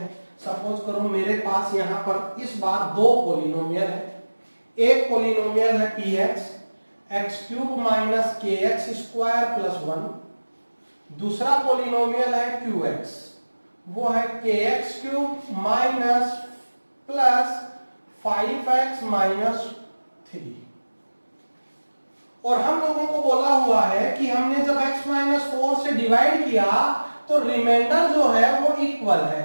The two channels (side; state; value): both; inverted; correlation -1.00